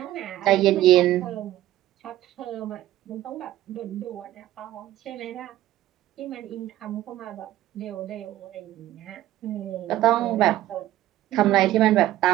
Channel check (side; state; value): left; quieter; 14.3 dB